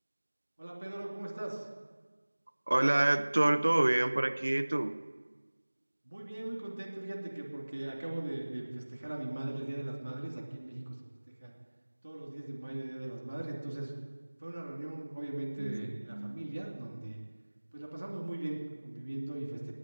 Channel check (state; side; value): inverted; both; correlation -1.00